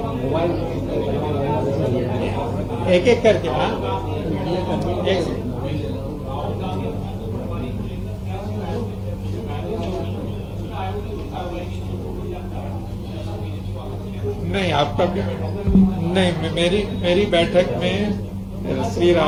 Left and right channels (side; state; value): both; identical; correlation 1.00